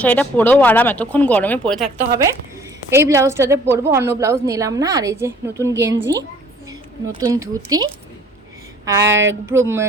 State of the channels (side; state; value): both; normal; correlation 0.54